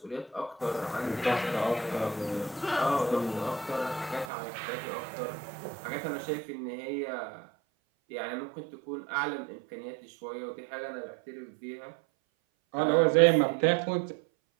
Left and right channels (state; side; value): drops out; left; at 4.2 s